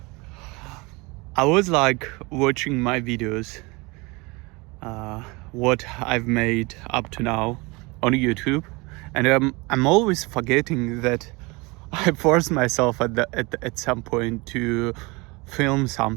I was like watching my videos, what I've made up to now on YouTube, and I'm always forgetting that I forced myself at some point to film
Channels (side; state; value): left; quieter; 25.8 dB